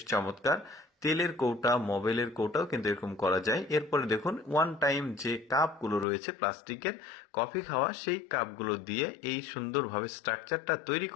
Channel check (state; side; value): drops out; right; at 6.1 s